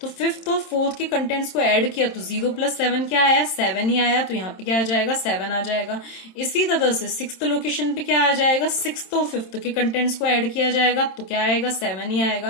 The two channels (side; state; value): right; late; 27 ms